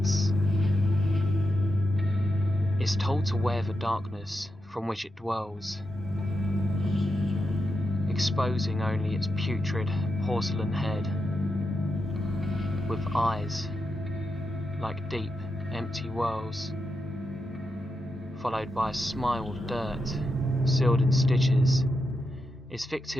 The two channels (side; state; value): both; normal; correlation 0.87